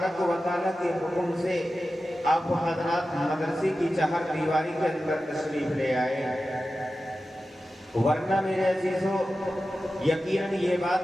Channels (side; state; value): both; normal; correlation 0.93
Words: و تعالیٰ کے حکم سے آپ حضرات مدرسے کی چہار دیواری کے اندر تشریف لے آئے۔ ورنہ میرے عزیزو، یقیناً یہ